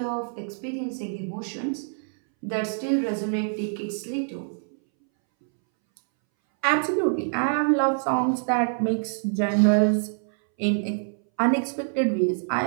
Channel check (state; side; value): silent; left; 61 dB below the other